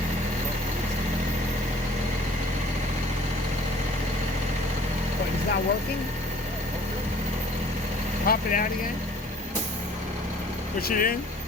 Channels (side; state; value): both; normal; correlation 0.52